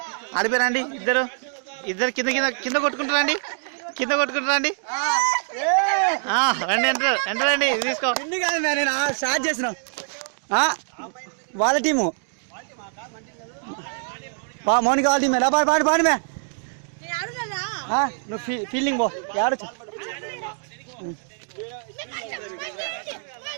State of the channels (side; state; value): left; silent; 62 dB below the other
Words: అడిపోరండి ఇద్దరు ఇద్దరు కింద కింద కింద కొట్టుకుంటారండి కింద కొట్టుకుంటారండి రండి ఎంటర్ ఎంటరండి తీసుకో ఇన్ని కాదు నేను స్టార్ట్ చేసిన వాళ్ళ టీము మౌనిక వాళ్ళ టీమే పాడు పాడు పాడు మే నువ్వు ఫీల్డింగ్ పో ఆడచ్చు